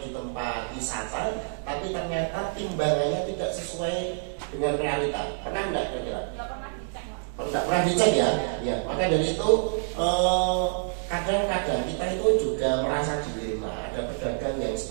di tempat wisata, tapi ternyata timbangannya tidak sesuai dengan realita. Pernah enggak kira-kira? Nggak pernah dicek, Pak. Pernah dicek ya? Ya. Maka dari itu kadang-kadang kita itu juga merasa dilema. Ada pedagang yang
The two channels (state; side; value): silent; left; digital silence